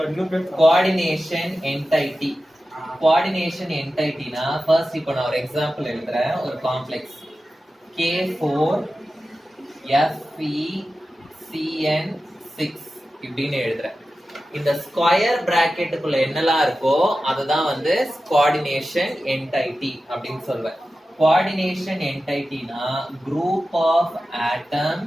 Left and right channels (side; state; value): both; normal; correlation 0.93